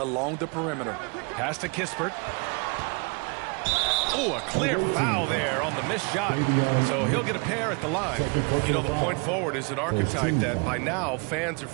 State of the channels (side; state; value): left; quieter; 33.1 dB